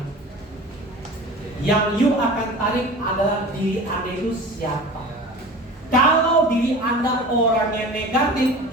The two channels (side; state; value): both; normal; correlation 0.37